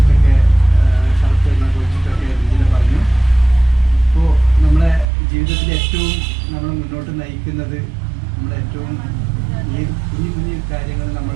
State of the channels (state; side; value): drops out; left; at 5.1 s